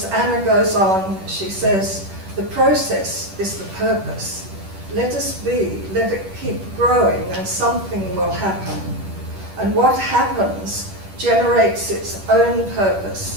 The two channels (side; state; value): left; late; 10 ms